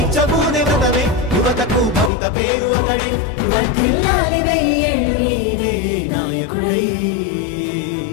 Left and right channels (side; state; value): right; drops out; at 2.1 s